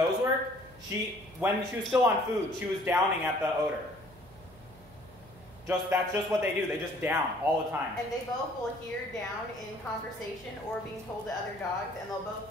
work, when she was still on food, she was downing at the odor. That's just what they do. They just down all the time. And they both will hear down in conversation or being told to other dogs, and they'll both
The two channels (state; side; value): noise; right; hum, 23 dB below the sound